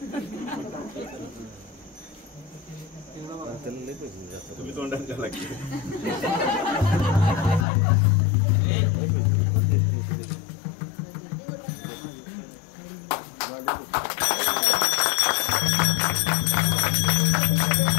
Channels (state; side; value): drops out; right; at 7.7 s